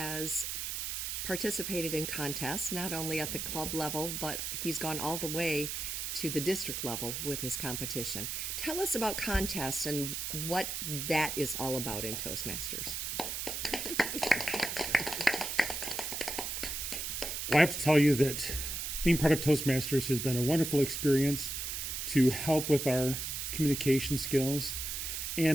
participated in contests, not only at the club level, but he's gone all the way to the district level with his competition. Tell us about contests and what that is all about in Toastmasters. Well, I have to tell you that being part of Toastmasters has been a wonderful experience to help with our communication skills.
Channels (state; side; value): noise; right; hiss, 3 dB below the sound